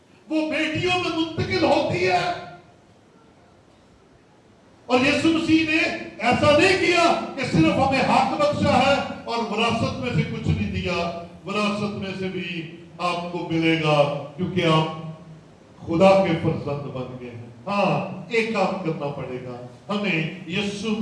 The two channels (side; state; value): both; identical; correlation 1.00